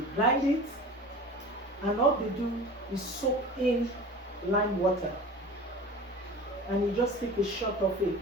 grind it, and all they do is soak in lime water, and you just take a shot of it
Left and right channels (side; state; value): both; normal; correlation 0.37